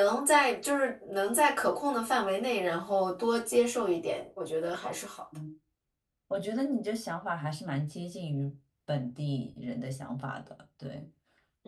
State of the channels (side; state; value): both; identical; correlation 1.00